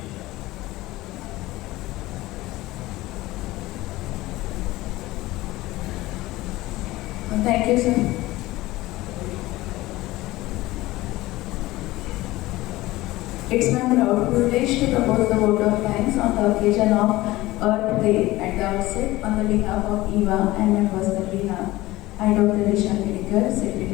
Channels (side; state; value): right; quieter; 18.3 dB